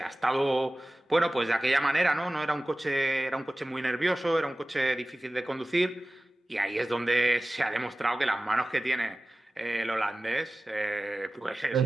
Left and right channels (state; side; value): normal; both; correlation 0.97